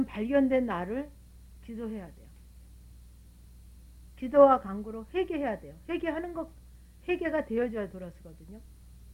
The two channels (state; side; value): identical; both; correlation 1.00